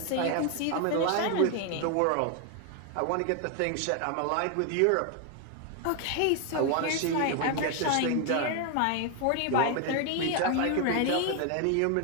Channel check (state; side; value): different; both; correlation 0.01